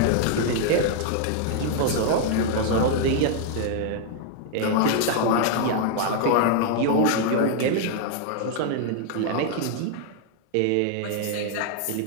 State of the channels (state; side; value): different; both; correlation 0.00